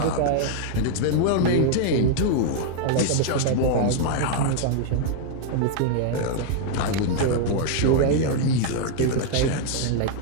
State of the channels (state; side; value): different; both; correlation 0.00